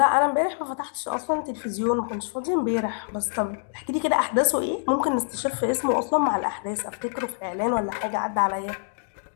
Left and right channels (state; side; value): silent; right; digital silence